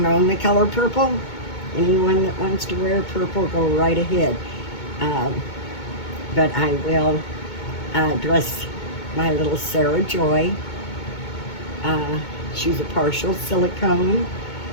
own the color purple. Anyone that wants to wear purple, go right ahead. But I will dress my little Sarah Joy. She's a partial silicone,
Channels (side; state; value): right; late; 2.2 ms